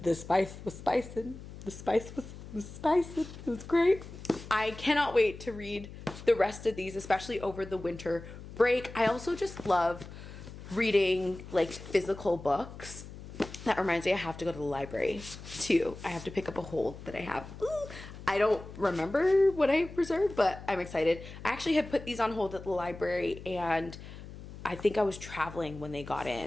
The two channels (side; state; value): left; noise; hum, 14 dB below the sound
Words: spice was spicing. The spice was spicing. It was great. I cannot wait to read the rest of these, especially over the winter break. I also just love reading like physical books. That reminds me, I have to go to the library too. I have to pick up a hold that I have. Ooh, I don't remember what I reserved, but I'm excited. I actually had put these on hold at the library, and I think I was traveling when they got